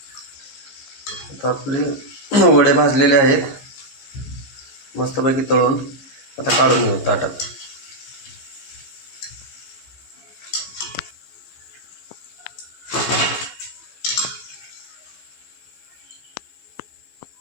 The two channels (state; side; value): late; right; 15 ms